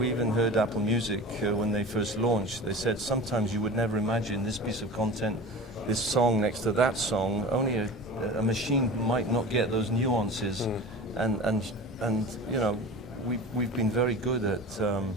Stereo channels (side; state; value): both; normal; correlation 0.34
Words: even heard Apple Music when they first launched. They said sometimes you would never imagine this piece of content, this song next to that song. Only a machine might not get those nuances, and we've been very good